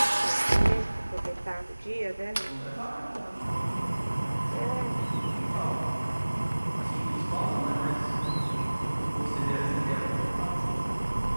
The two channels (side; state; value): both; inverted; correlation -1.00